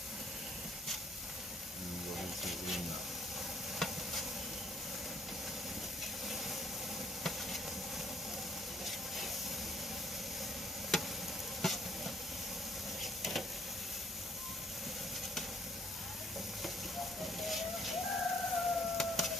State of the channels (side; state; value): both; normal; correlation 0.64